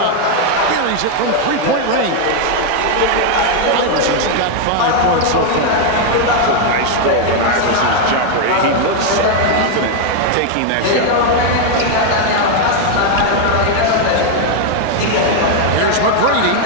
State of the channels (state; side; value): different; both; correlation 0.01